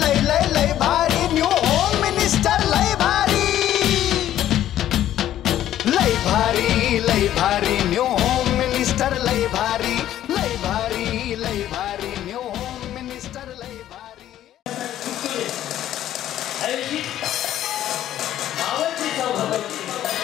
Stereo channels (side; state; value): right; quieter; 12.2 dB